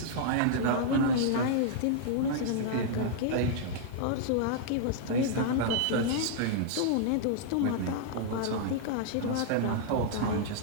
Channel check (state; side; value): different; both; correlation -0.01